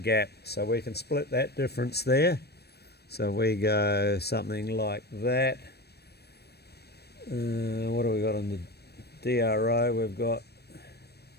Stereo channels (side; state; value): right; late; 0.47 ms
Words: gap, so we can split that difference there. So we go something like that. What do we got on the DRO? We've got